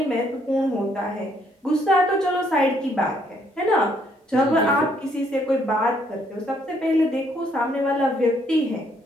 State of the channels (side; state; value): both; normal; correlation 0.69